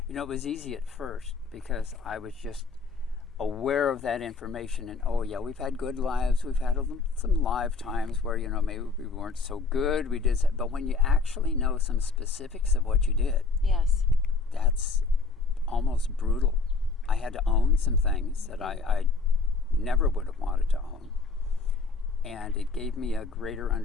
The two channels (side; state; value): right; quieter; 4.1 dB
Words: you know, it was easy at first because I was just aware of that information, and oh yeah, we've had good lives, we've had some live times where, you know, maybe we weren't so good, we did, but when you actually know some specifics of what you did, yes, that's almost brutal. I had to own some things that I never would have wanted to own, and it gave me a greater